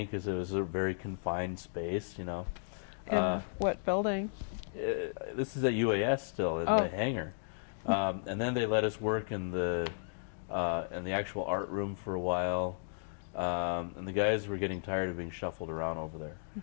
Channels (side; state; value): right; silent; digital silence